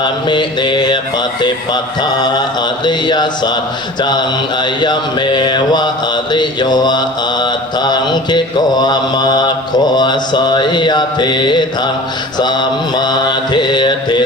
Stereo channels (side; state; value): both; normal; correlation 0.40